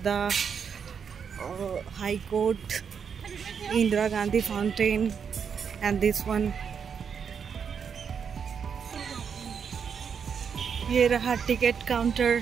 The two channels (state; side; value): quieter; left; 6.9 dB